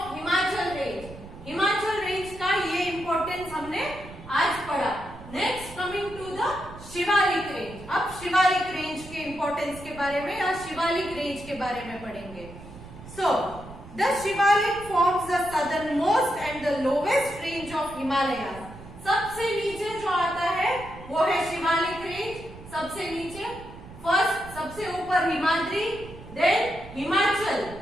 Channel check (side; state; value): right; noise; rumble, 16 dB below the sound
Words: Himachal range. Himachal range का ये importance हमने आज पढ़ा। Next coming to the Shivalik range. अब शिवालिक range के importance के बारे में या शिवालिक range के बारे में पढ़ेंगे। So the Shivalik forms the southernmost and the lowest range of Himalayas. सबसे नीचे जो आता है वो है शिवालिक range। सबसे नीचे फर्स्ट, सबसे ऊपर Himadri, then Himachal